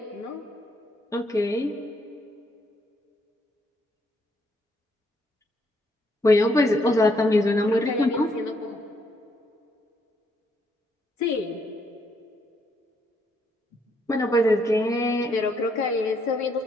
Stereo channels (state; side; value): normal; both; correlation 0.73